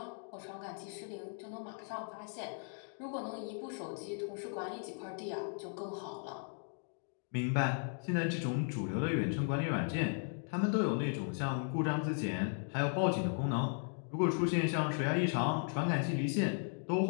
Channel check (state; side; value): silent; right; 53 dB below the other